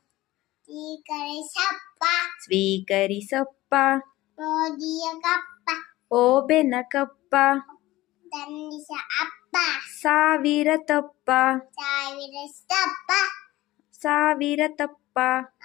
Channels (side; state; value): right; quieter; 17.6 dB